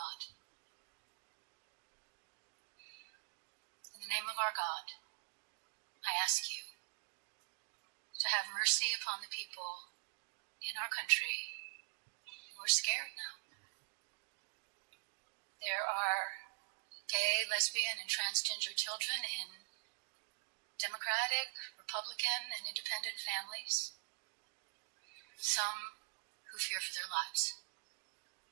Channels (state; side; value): silent; left; digital silence